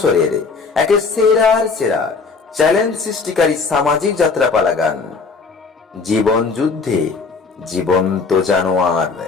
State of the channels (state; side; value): quieter; right; 4.6 dB